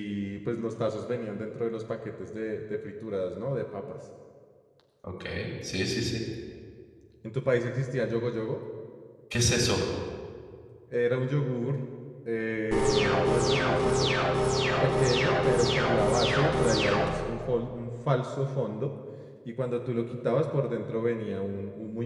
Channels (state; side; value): identical; both; correlation 1.00